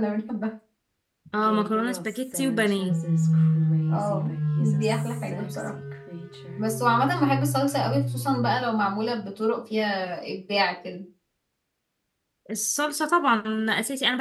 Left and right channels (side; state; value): both; identical; correlation 1.00